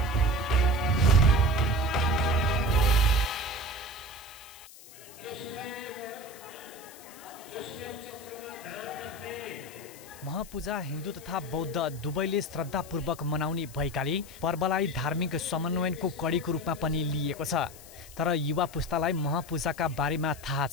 महापूजा हिन्दू तथा बौद्ध दुवैले श्रद्धापूर्वक मनाउने भएकाले पर्वलाई धार्मिक समन्वयनको कडीको रूपमा पनि लिएको छ। तर युवा पुस्तालाई महापूजाका बारेमा थाहा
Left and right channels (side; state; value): left; noise; hiss, 19 dB below the sound